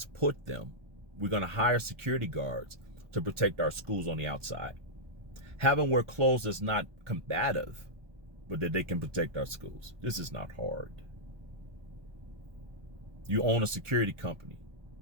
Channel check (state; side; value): late; left; 1.2 ms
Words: put them, we're gonna hire security guards to protect our schools on the outside. Have them wear clothes that's not combative, but that they can protect our schools. This is not hard. You own a security company.